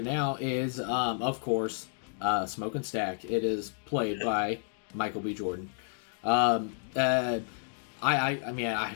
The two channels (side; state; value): right; silent; digital silence